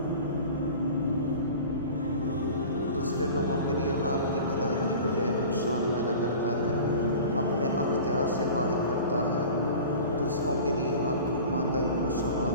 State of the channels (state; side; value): inverted; both; correlation -0.39